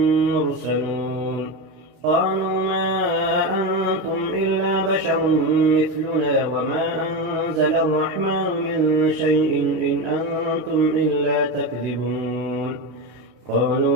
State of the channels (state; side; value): late; left; 32 ms